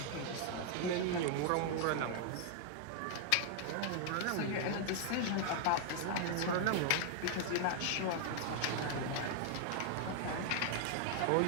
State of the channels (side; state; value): both; different; correlation 0.00